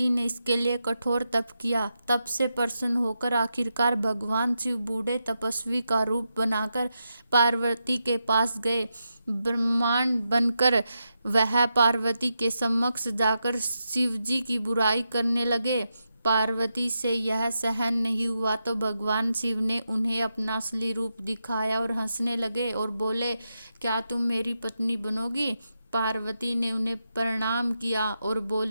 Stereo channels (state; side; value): inverted; both; correlation -0.86